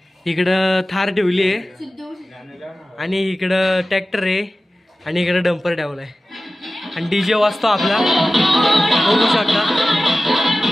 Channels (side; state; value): both; normal; correlation 0.95